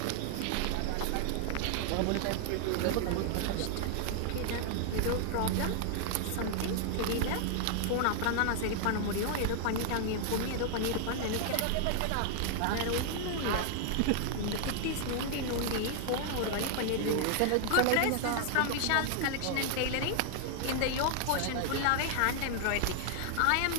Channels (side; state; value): both; different; correlation 0.00